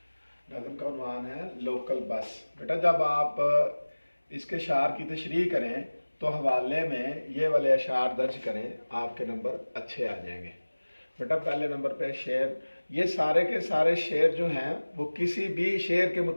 नज़म का उन्वान है लोकल बस। बेटा जब आप इसके शार की तशरीह करें तो हवाले में ये वाले अशार दर्ज करें, आपके नंबर अच्छे आ जाएंगे। बेटा पहले नंबर पे शेर, ये सारे के सारे शेर जो हैं वो किसी भी शेर के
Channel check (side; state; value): both; inverted; correlation -1.00